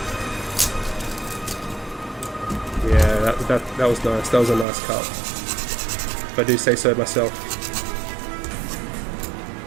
Yeah, that was nice. That was a nice cut. If I do say so myself.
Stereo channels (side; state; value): left; drops out; at 4.7 s